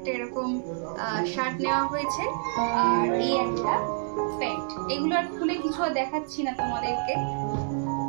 এরকম শার্ট নেওয়া হয়েছে, আর এই একটা প্যান্ট। এগুলো আর খুলে কিছু আর দেখাচ্ছি না তোমাদেরকে,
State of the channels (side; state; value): left; silent; digital silence